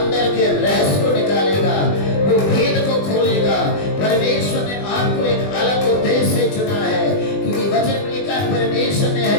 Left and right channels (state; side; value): late; right; 20 ms